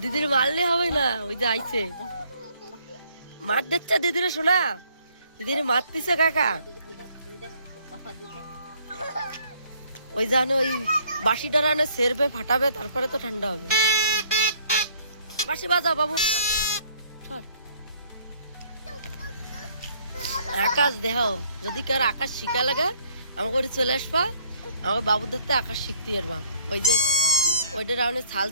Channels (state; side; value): inverted; both; correlation -0.62